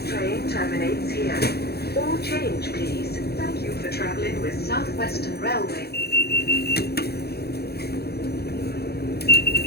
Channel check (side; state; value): right; late; 0.46 ms